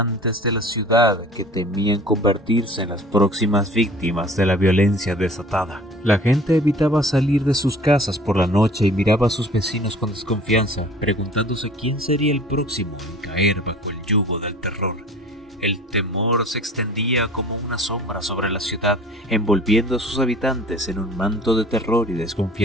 de la ciudad, que temían convertirse en las próximas víctimas de la violencia desatada. La gente evitaba salir de sus casas por la noche y miraba a sus vecinos con desconfianza, preguntándose quién sería el próximo en caer bajo el yugo del terror. El temor se extendía como una sombra sobre la ciudad, envolviendo a sus habitantes en un manto de terror y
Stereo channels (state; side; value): normal; both; correlation 0.47